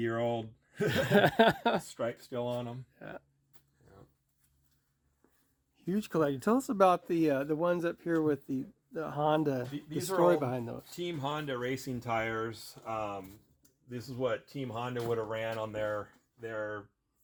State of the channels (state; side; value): identical; both; correlation 1.00